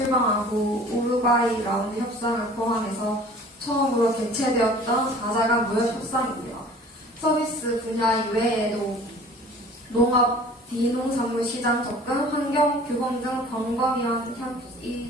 우루과이 라운드 협상을 포함해서 처음으로 개최되었던 다자간 무역 협상이고요. 서비스 분야 이외에도 농업, 비농산물 시장 접근, 환경, 규범 등 광범위한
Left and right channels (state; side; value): normal; both; correlation 0.47